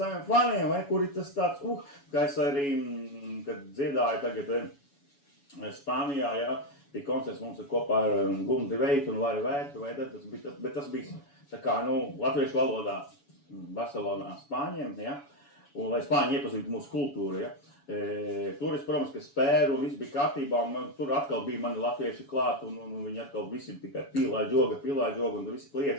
faniem, vai kur ir tas tāds, kā es arī, kad dziedāju tagad Spānijā, ja. Bija koncerts mums kopā ar Gundi Veitu un Lari Vētu, bet tas bija tā kā, latviešu valodā Barcelonā Spāņiem, ja, un lai Spāņi iepazītu mūsu kultūru, ja. Tur es, protams, ka spēru un viss bija kārtībā, un tur atkal bija mani latvieši klāt, un viņi atkal visi tikai pilā joga, un visi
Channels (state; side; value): late; right; 7.1 ms